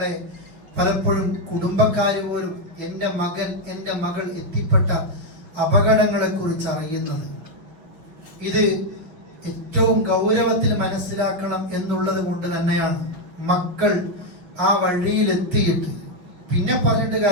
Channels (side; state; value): left; late; 5.8 ms